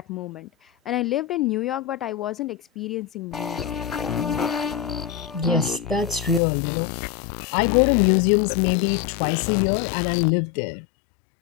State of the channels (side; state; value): right; drops out; at 6.4 s